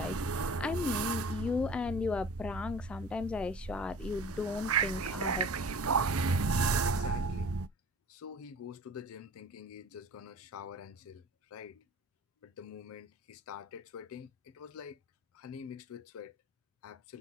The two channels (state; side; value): normal; both; correlation 0.43